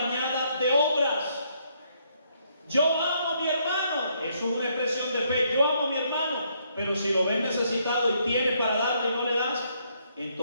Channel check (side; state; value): both; inverted; correlation -0.72